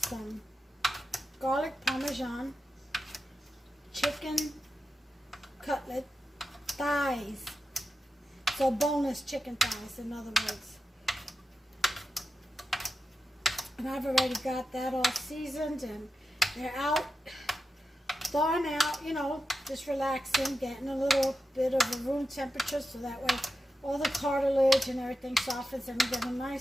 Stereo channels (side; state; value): both; normal; correlation 0.90